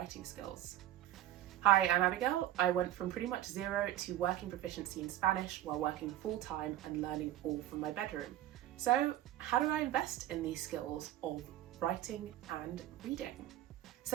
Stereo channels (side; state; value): left; quieter; 13.4 dB